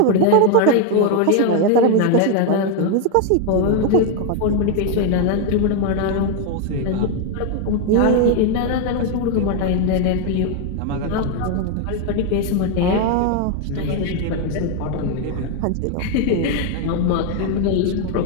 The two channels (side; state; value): both; different; correlation 0.01